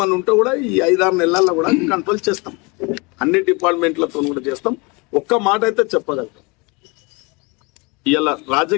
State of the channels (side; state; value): right; quieter; 28.5 dB